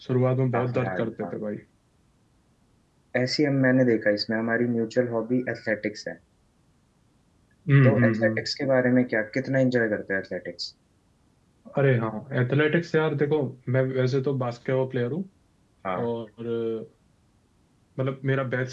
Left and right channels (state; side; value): identical; both; correlation 1.00